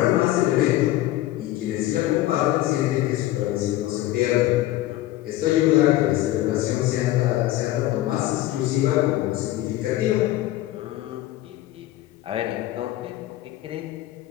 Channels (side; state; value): right; quieter; 15.3 dB